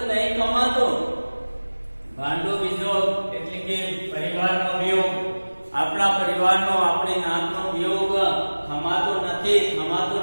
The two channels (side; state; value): both; inverted; correlation -1.00